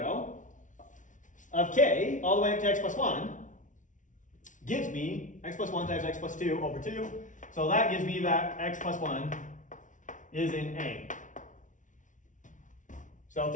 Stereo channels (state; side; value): late; right; 0.37 ms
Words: of k all the way up to x plus 1 gives me x plus 1 times x plus 2 over 2. So that gives me that x plus 1 is in A. So